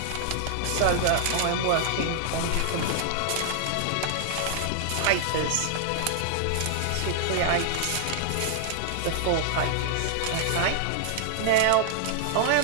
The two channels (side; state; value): both; different; correlation -0.01